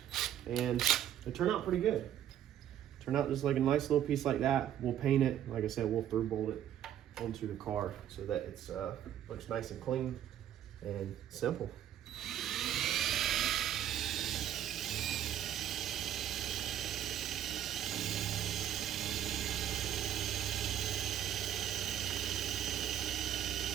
and they turn out pretty good. Turn out just like a nice little piece like that. We'll paint it. Like I said, we'll through bolt it onto the car so that it's looks nice and clean and simple.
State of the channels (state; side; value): quieter; left; 10.9 dB